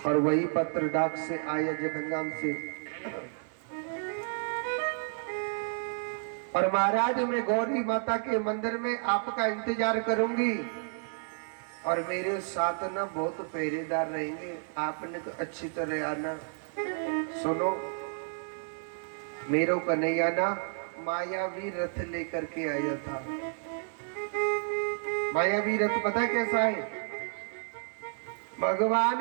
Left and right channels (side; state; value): left; silent; digital silence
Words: और वही पत्र डाक से आया जगन्नाम से। और महाराज मैं गौरी माता के मंदिर में आपका इंतजार करूंगी और मेरे साथ ना बहुत पहरेदार रहेंगे, आपने तो अच्छी तरह आना। सुनो मेरो कन्हैया ना मायावी रथ लेकर के आया था। मायावी रथ पता कैसा है?